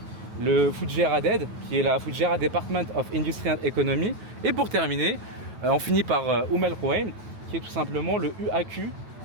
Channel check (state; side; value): late; left; 9.2 ms